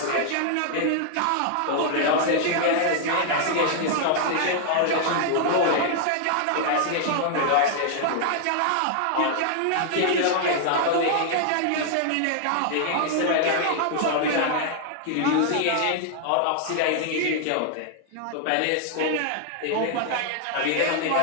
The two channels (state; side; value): different; both; correlation 0.00